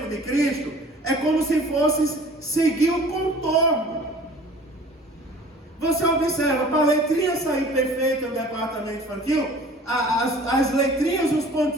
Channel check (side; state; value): both; normal; correlation 0.48